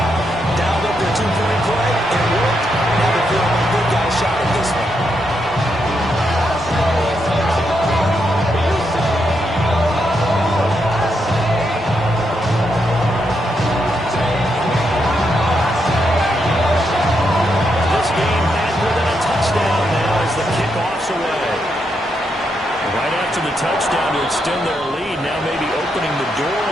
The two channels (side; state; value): both; normal; correlation 0.81